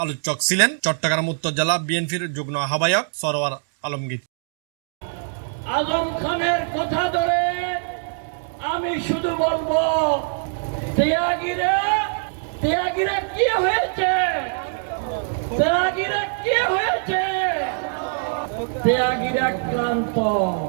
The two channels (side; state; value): left; silent; 64 dB below the other